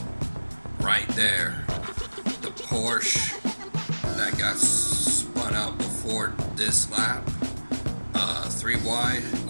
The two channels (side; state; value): both; inverted; correlation -1.00